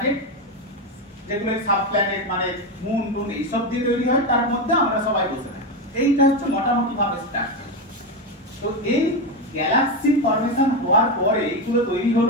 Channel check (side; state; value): both; normal; correlation 0.12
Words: যেগুলো সাব প্ল্যানেট মানে মুন টুন এইসব দিয়ে তৈরি হয়, তার মধ্যে আমরা সবাই বসে থাকি। এইটা হচ্ছে মোটামুটি ভাবে স্ট্রাকচার। তো এই গ্যালাক্সি ফর্মেশন হওয়ার পরে এইগুলো তৈরি